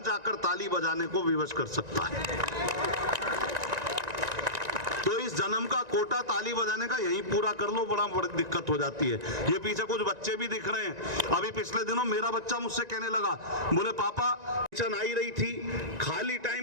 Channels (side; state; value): left; late; 1.9 ms